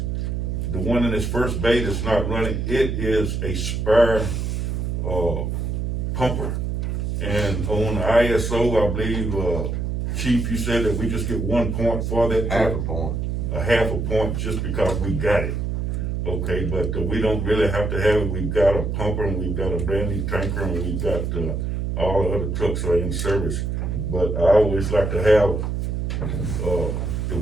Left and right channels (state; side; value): noise; right; hum, 1 dB below the sound